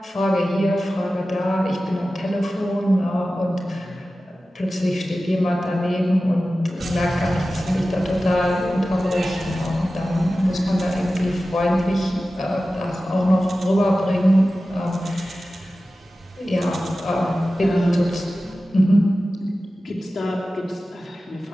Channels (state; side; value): normal; both; correlation 0.95